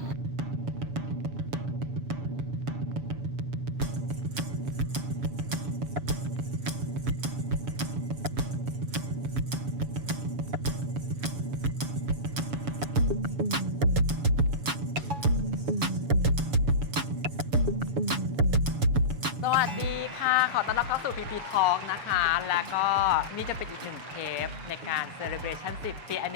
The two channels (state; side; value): late; left; 7.0 ms